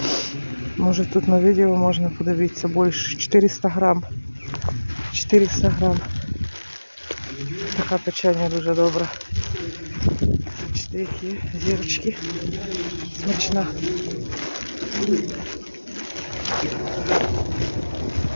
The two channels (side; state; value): both; inverted; correlation -1.00